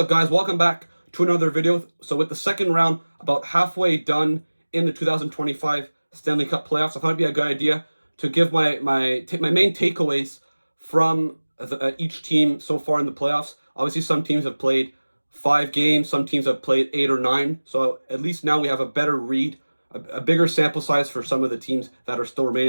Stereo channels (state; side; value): inverted; both; correlation -1.00